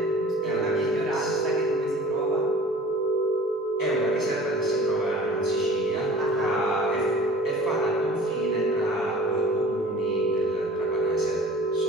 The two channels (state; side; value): normal; both; correlation 0.46